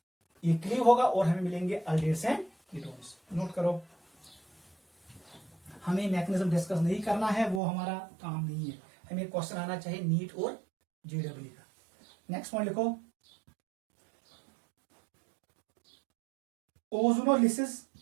ये क्लीव होगा और हमें मिलेंगे अल्डिहाइड्स एंड कीटोन्स. नोट करो, हमें मैकेनिज्म डिस्कस नहीं करना है, वो हमारा काम नहीं है. हमें क्वेश्चन आना चाहिए नीट और JEE का। नेक्स्ट पॉइंट लिखो, ozonolysis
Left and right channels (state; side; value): drops out; left; at 7.6 s